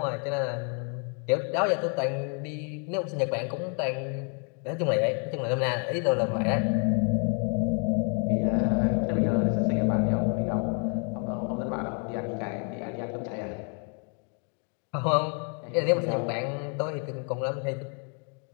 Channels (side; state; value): right; quieter; 39.7 dB